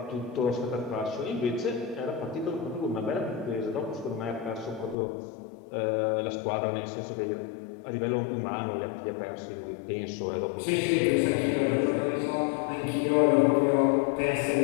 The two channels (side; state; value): right; drops out; at 5.0 s